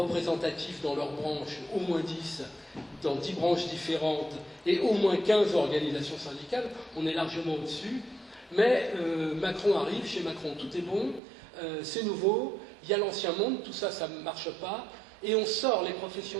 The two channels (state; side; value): drops out; left; at 11.2 s